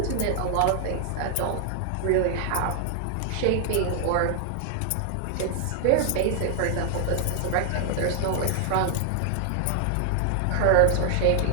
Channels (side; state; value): both; different; correlation 0.00